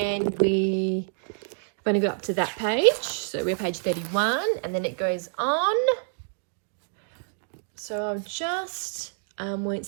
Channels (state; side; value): silent; left; digital silence